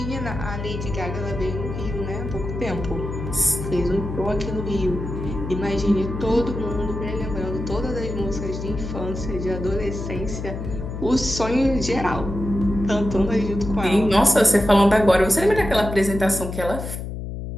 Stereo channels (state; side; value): noise; left; hum, 6 dB below the sound